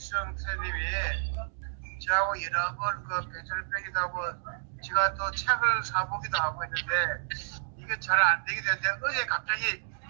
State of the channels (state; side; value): silent; left; digital silence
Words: 선생님이 저하고 여러 번 그 배철 빼기도 하고 제가 또 책을 사보기도 하고 했는데 이게 잘 안 되게 됐는데 어제 갑자기